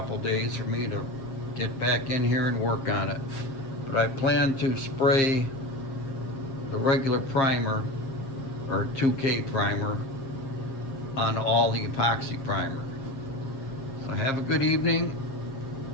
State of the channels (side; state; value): right; late; 7.4 ms